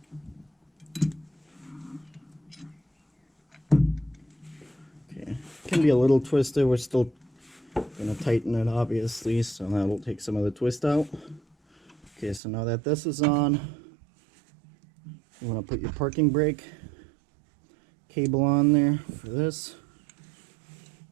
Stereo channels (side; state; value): left; drops out; at 12.4 s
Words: Okay, can be a little twisted. We're still going to tighten it, obviously, so that'll take some of the twist out. Okay, so now that this is on, you want to put your parking brake cable on there for this.